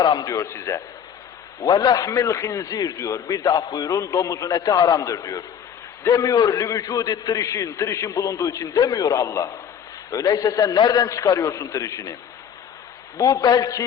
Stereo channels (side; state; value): right; quieter; 8.3 dB